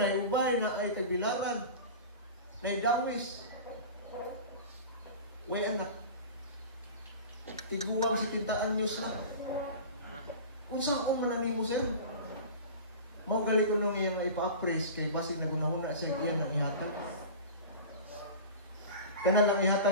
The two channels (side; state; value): both; inverted; correlation -0.34